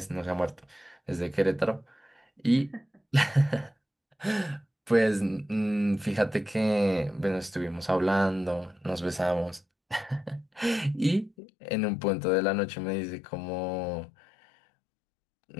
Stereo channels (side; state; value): right; drops out; at 11.4 s